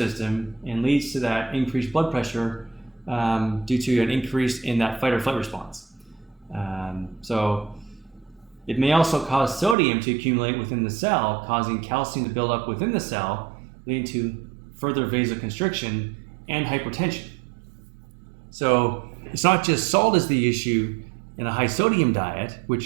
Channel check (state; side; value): drops out; left; at 9.8 s